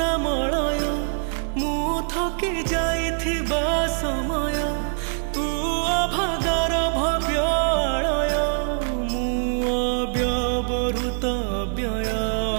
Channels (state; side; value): silent; left; digital silence